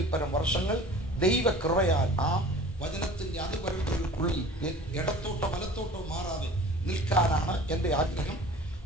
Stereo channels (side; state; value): both; normal; correlation 0.44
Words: പരം വർഷങ്ങൾ ദൈവകൃപയാൽ ആ വചനത്തിന്റെ അതിപരത്തിനുള്ളിൽ ഇടത്തോട്ടോ വലത്തോട്ടോ മാറാതെ നിൽക്കാനാണ് എന്റെ ആഗ്രഹം.